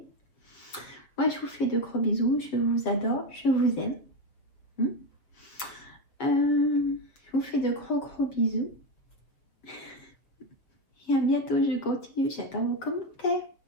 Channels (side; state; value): right; late; 7.1 ms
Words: Moi, je vous fais de gros bisous. Je vous adore. Je vous aime. Je vous fais de gros bisous. Et à bientôt. Je continue. J'attends vos commentaires.